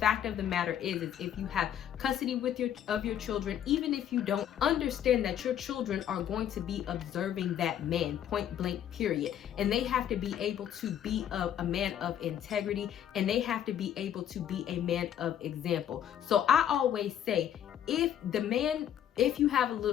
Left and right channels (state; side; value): quieter; right; 10.1 dB